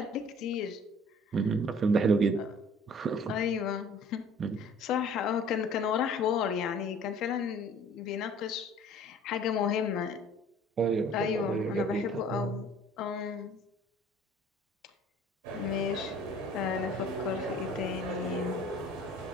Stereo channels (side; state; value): both; normal; correlation 0.51